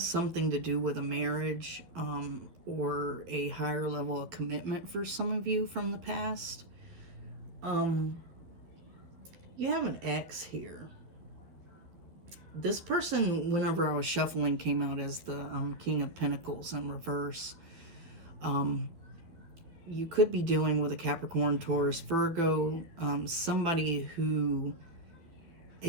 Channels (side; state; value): left; late; 12 ms